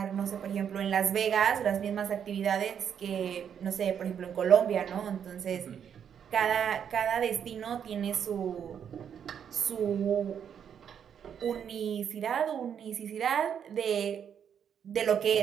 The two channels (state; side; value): quieter; left; 8.2 dB